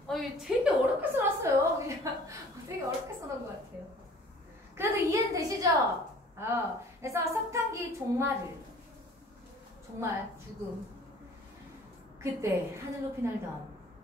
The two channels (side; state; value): both; normal; correlation 0.50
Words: 되게 어렵게 써놨어요. 그냥 되게 어렵게 써놓은 것 같아요. 그래도 이해는 되시죠? 그래서 석탄기 종말, 죽음. 그때 하늘 높이 날던